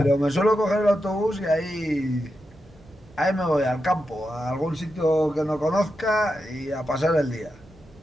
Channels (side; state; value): both; normal; correlation 0.88